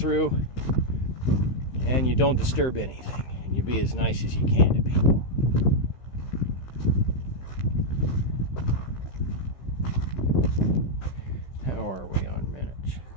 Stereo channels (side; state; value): right; late; 16 ms